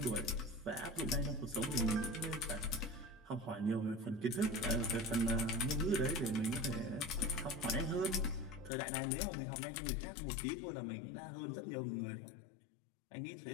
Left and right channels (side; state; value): right; drops out; at 8.7 s